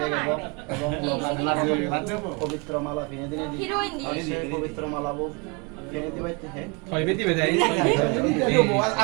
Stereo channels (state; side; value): quieter; left; 30.2 dB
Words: এবং পবিত্র মালা ফিনে দিনে দিয়ে পবিত্র মালা ফিনে দিবাইতে